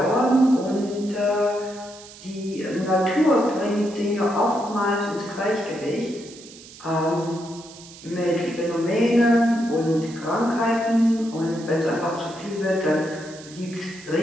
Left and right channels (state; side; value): noise; right; hiss, 19 dB below the sound